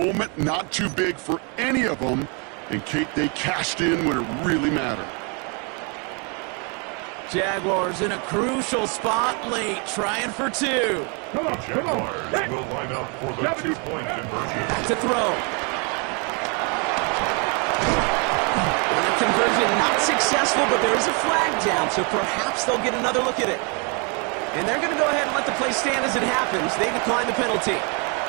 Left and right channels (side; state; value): left; quieter; 34.5 dB